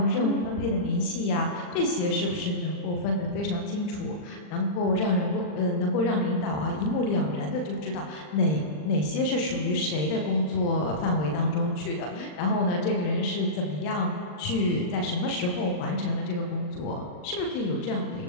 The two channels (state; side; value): late; right; 40 ms